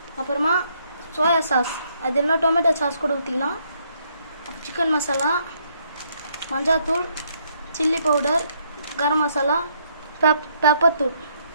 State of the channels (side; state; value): both; inverted; correlation -0.71